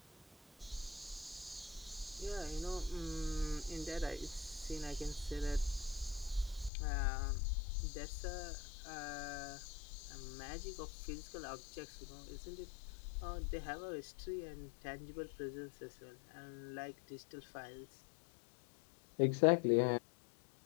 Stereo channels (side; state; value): right; drops out; at 6.7 s